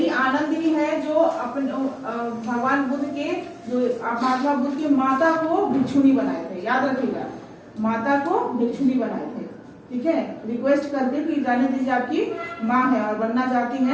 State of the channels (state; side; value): identical; both; correlation 1.00